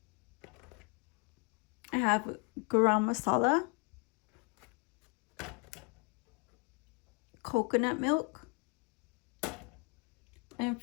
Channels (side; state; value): right; quieter; 32.9 dB